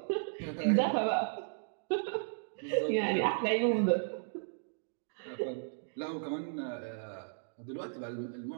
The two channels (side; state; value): left; silent; digital silence